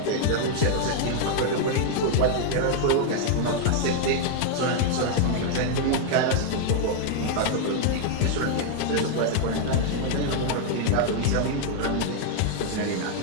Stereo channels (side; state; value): both; different; correlation 0.00